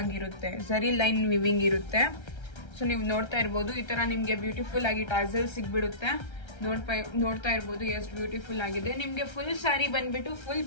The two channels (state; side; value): late; right; 1.3 ms